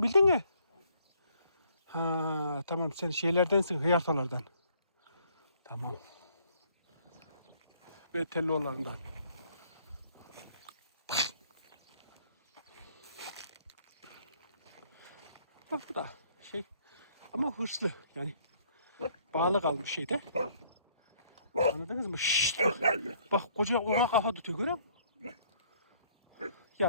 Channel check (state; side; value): inverted; both; correlation -0.63